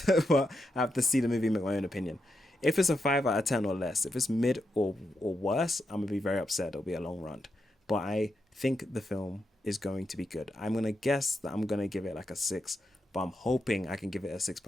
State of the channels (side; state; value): both; normal; correlation 0.84